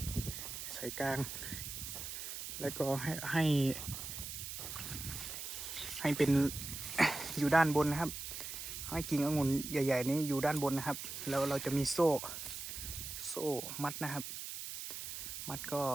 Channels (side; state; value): right; noise; hiss, 7 dB below the sound